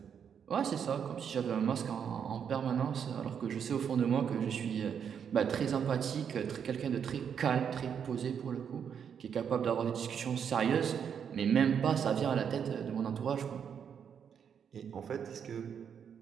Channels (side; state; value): left; quieter; 7.7 dB